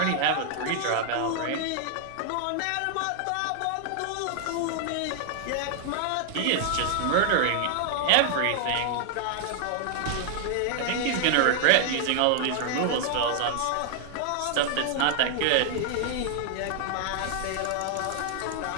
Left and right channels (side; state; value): both; different; correlation 0.00